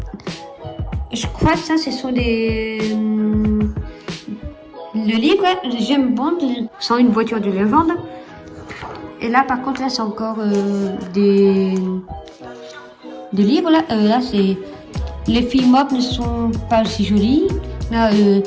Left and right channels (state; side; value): identical; both; correlation 1.00